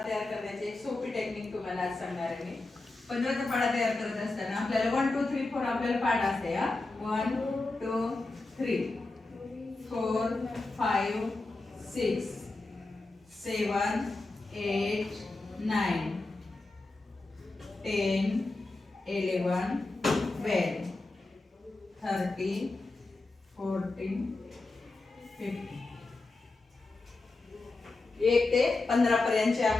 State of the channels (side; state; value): right; quieter; 3.3 dB